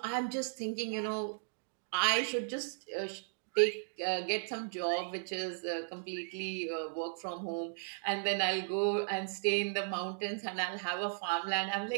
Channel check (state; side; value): silent; left; digital silence